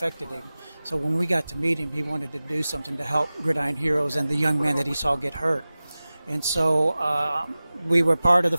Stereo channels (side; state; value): both; inverted; correlation -0.97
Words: him. So when we got to meet him, he wanted to do something to help Gridiron Heroes and the young man that he saw get hurt. And so we were part of the